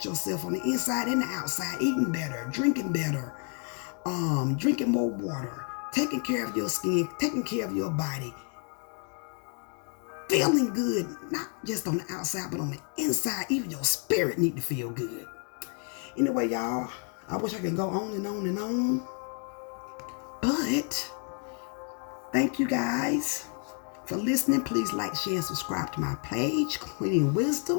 yourself on the inside and the outside, eating better, drinking better, drinking more water, taking care of your skin, taking care of your body, feeling good, not just on the outside, but on the inside. Even your spirit need to feel good. Anyway, y'all, I wish I could go on and on and on, but thank you guys for listening. Please like, share, and subscribe to my page, Queen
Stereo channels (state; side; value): quieter; right; 38.1 dB